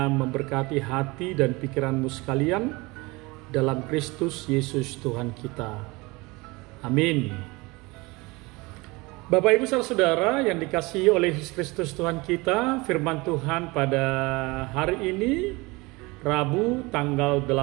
memberkati hati dan pikiranmu sekalian dalam Kristus Yesus Tuhan kita. Amin. Bapak Ibu saudara yang dikasihi oleh Yesus Kristus Tuhan kita, firman Tuhan pada hari ini Rabu tanggal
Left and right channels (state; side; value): quieter; left; 24.1 dB